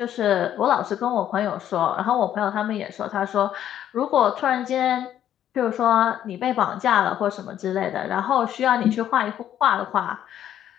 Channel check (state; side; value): quieter; right; 10.9 dB